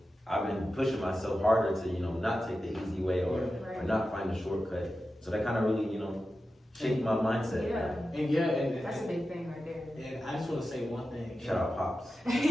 I've been pushing myself harder to not take the easy way or not find a shortcut. So that kind of really shaped my mindset. Yeah. And that's a big thing right there. And I just want to say one thing. Shout out Pops.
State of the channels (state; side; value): normal; both; correlation 0.92